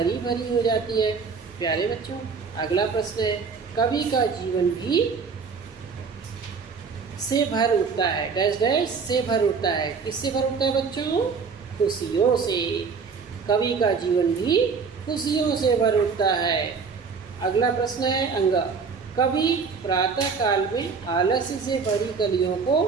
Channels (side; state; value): left; quieter; 5.4 dB